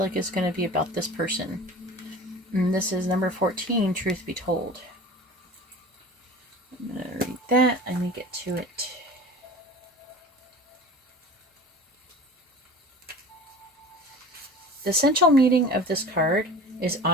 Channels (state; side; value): normal; both; correlation 0.38